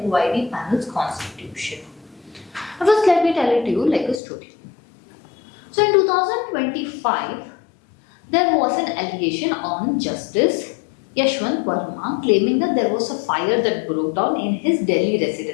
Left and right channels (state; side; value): drops out; right; at 4.2 s